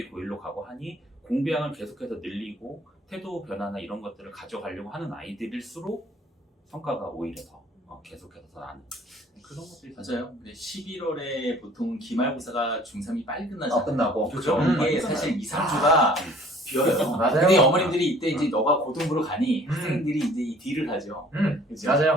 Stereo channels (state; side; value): normal; both; correlation 0.53